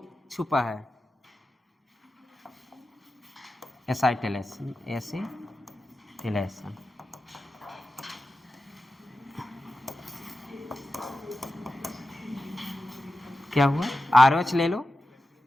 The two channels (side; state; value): both; normal; correlation 0.92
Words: छुपा है। एसिटिलेशन, एसिटिलेशन क्या हुआ, RH ले लो